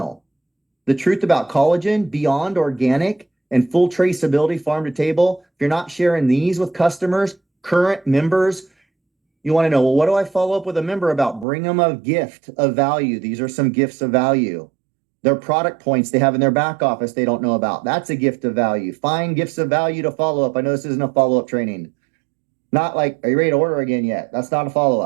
The truth about collagen, beyond organic, and full traceability farm to table. If you're not sharing these with customers, current members, you want to know, well, what do I follow up with a member about? Bring them a gift of value. These are some gifts of value. Their product points they have in their back office they don't know about. That's a gift of value. Find gifts of value to follow up. I know this isn't a follow-up training. Not like, are you ready to order again yet? That's not a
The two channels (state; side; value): drops out; left; at 11.5 s